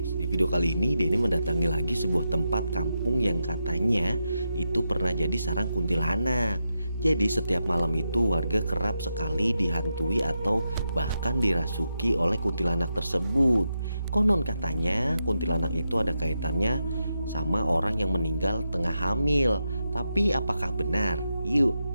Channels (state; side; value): inverted; both; correlation -0.86